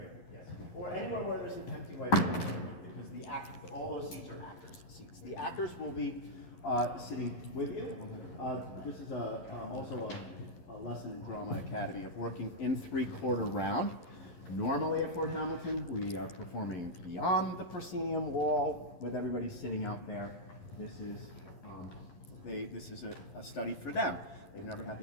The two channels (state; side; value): late; right; 11 ms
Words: yes. Or anywhere where there's an empty whiteboard, because all those seats are actors' seats. The actors will be sitting with you. This is also a lesson in Drama Academy of working in three-quarter round. Normally at Fort Hamilton, we are performing beyond the proscenium wall with everybody sitting out there. This is a study for them. They've never had